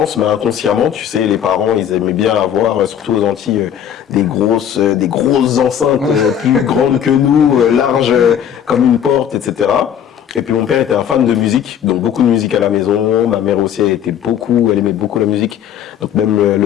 mais inconsciemment, tu sais, les parents, ils aimaient bien avoir, surtout aux Antilles, des grosses enceintes plus grandes que nous, larges comme une porte, etc. Et puis mon père était un fan de musique, donc beaucoup de musique à la maison. Ma mère aussi, elle aimait beaucoup la musique. Donc même le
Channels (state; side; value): quieter; right; 9.3 dB